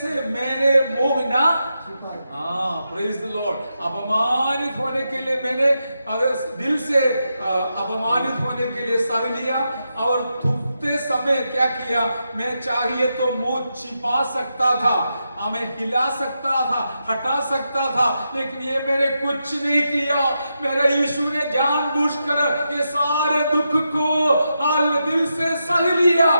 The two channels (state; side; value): inverted; both; correlation -0.86